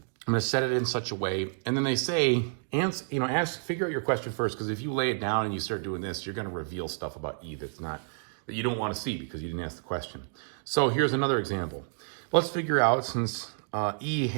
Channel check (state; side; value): silent; left; digital silence